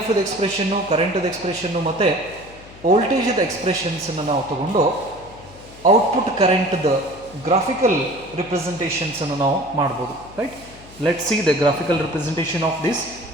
ಎಕ್ಸ್ಪ್ರೆಷನ್ನು, ಕರೆಂಟದ ಎಕ್ಸ್ಪ್ರೆಷನ್ನು ಮತ್ತು ವೋಲ್ಟೇಜದ ಎಕ್ಸ್ಪ್ರೆಷನ್ಸನ್ನು ನಾವು ತಗೊಂಡು ಔಟ್ಪುಟ್ ಕರೆಂಟ್ದ ಗ್ರಾಫಿಕಲ್ ರಿಪ್ರೆಸೆಂಟೇಷನ್ಸನ್ನು ನಾವು ಮಾಡ್ಬೋದು. Right? Let see the graphical representation of this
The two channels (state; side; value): noise; left; hum, 20 dB below the sound